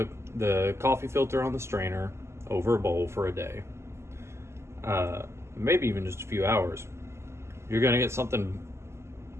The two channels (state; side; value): late; left; 0.13 ms